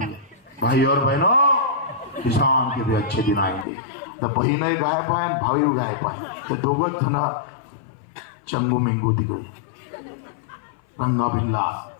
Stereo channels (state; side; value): drops out; right; at 3.7 s